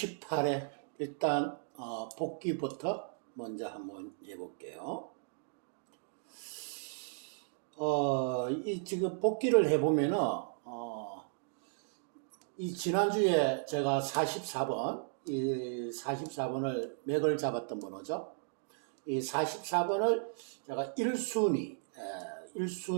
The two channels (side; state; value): left; silent; digital silence